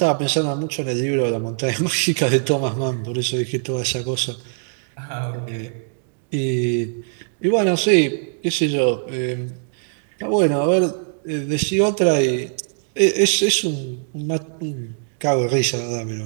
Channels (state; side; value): silent; left; 65 dB below the other